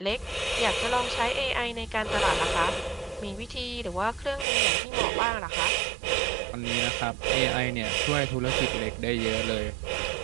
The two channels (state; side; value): drops out; left; at 4.5 s